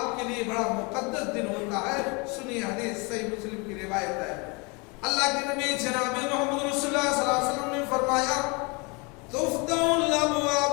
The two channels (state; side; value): quieter; right; 29.7 dB